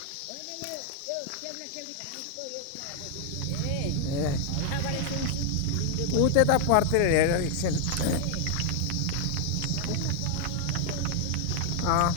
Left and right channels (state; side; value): different; both; correlation 0.00